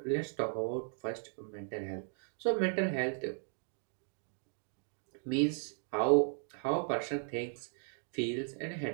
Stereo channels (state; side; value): silent; left; 53 dB below the other